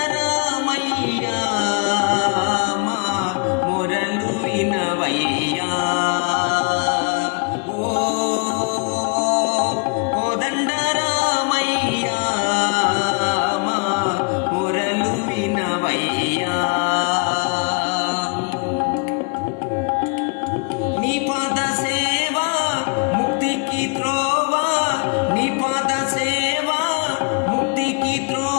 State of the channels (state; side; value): quieter; right; 34.3 dB